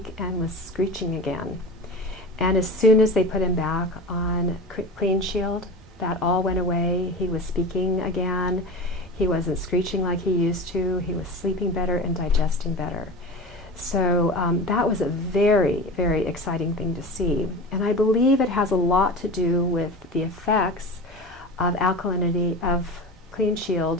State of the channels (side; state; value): both; normal; correlation 0.31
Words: and was screeching again. And as soon as they put him back on CleanShield, that all went away. He was speaking again. He wasn't screeching like he used to. He was sleeping better and digesting better. So that was a very, very exciting thing to see. And I believe it has a lot to do with the effects of alkalinity, of